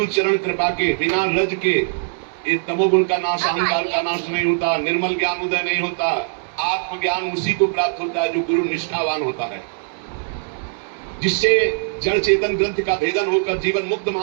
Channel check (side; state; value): left; silent; digital silence